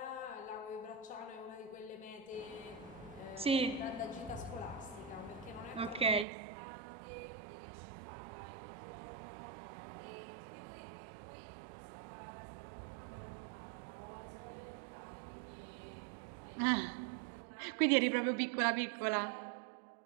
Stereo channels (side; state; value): left; drops out; at 6.2 s